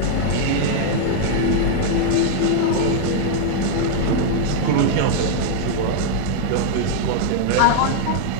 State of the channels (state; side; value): different; both; correlation -0.01